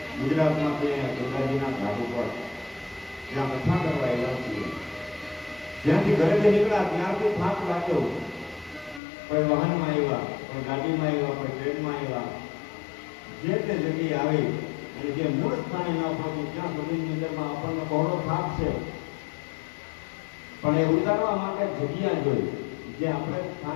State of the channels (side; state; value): right; drops out; at 9.0 s